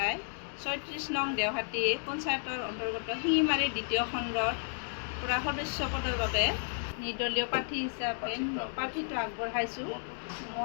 ৩৬ নং দেওহাটী পঞ্চায়তৰ অন্তৰ্গত শিঙিমাৰী দ্বিতীয় খণ্ডৰ পৰা সদস্য পদৰ বাবে নিৰ্দলীয় প্ৰাৰ্থী হিচাপে প্ৰাৰ্থীটো আগবঢ়াইছোঁ।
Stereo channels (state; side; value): silent; right; digital silence